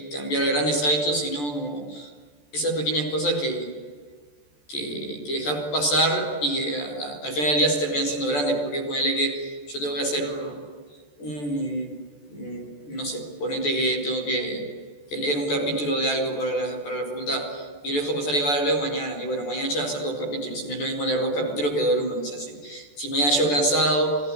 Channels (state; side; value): late; right; 14 ms